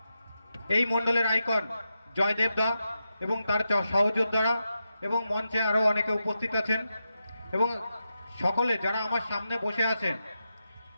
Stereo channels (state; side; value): inverted; both; correlation -0.88